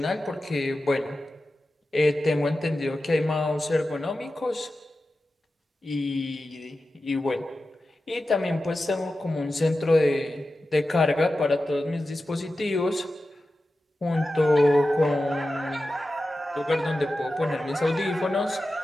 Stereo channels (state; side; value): normal; both; correlation 0.93